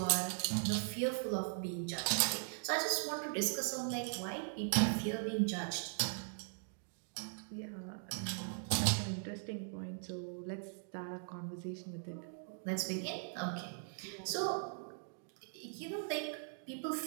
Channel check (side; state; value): left; silent; digital silence